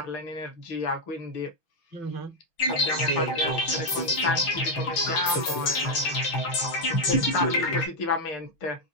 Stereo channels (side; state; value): right; late; 6.1 ms